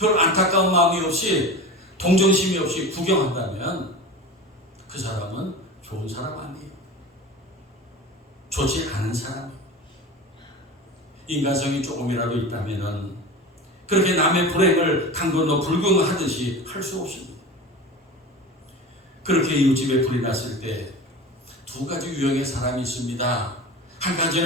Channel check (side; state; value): both; normal; correlation 0.32